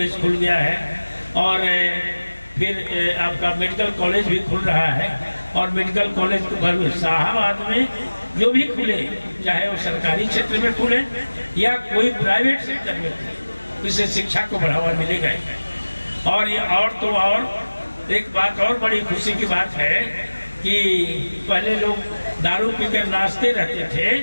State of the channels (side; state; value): both; inverted; correlation -1.00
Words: खुल गया है और फिर आपका मेडिकल कॉलेज भी खुल रहा है। और मेडिकल कॉलेज को शाहाबाद में जो भी खुले, चाहे वो सरकारी क्षेत्र में खुले या कोई प्राइवेट सेक्टर में खुले, इससे शिक्षा को बढ़ावा मिलेगा। और ये और एक बात और बड़ी खुशी की बात है कि पहले लोग दारू पीकर नाचते रहते थे,